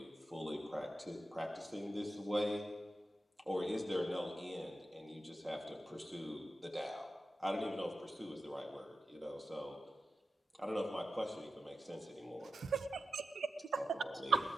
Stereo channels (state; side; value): normal; both; correlation 0.91